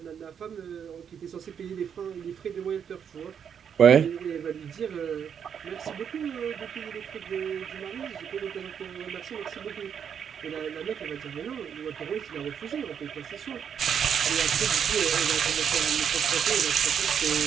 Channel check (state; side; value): quieter; left; 7.8 dB